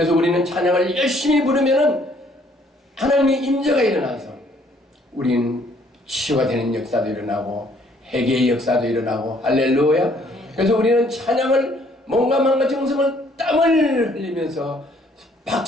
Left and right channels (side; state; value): both; normal; correlation 0.63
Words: 우리는 찬양을 열심히 부르면은 하나님의 임재가 일어나서 우리는 치유가 되는 역사도 일어나고 회개의 역사도 일어나고, 할렐루야. 그래서 우리는 찬양을 몸과 마음과 정성을 땀을 흘리면서